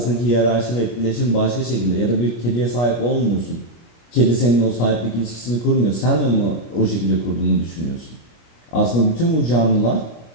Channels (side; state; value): right; late; 25 ms